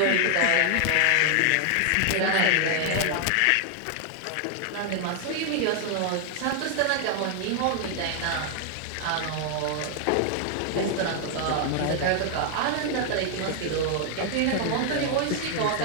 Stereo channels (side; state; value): both; different; correlation 0.00